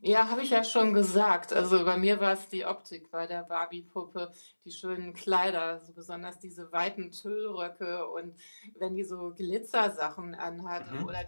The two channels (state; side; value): inverted; both; correlation -1.00